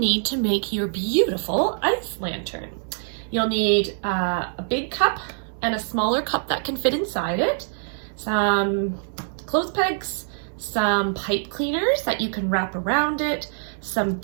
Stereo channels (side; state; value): left; silent; 62 dB below the other